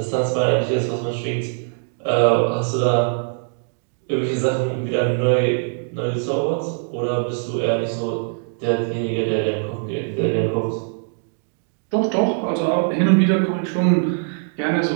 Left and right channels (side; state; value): left; silent; digital silence